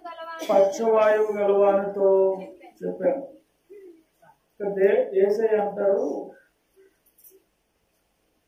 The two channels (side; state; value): both; identical; correlation 1.00